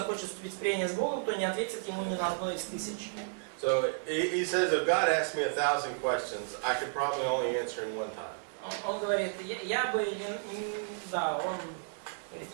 вступить в прение с Богом, то не ответит ему ни на одно из 1000. So he says, if God asked me 1,000 questions, I could probably only answer in one time. Он говорит, я бы, да, он говорит,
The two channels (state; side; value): silent; left; digital silence